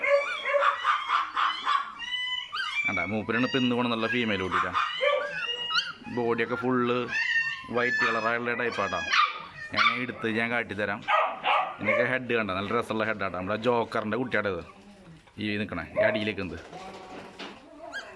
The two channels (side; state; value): both; identical; correlation 1.00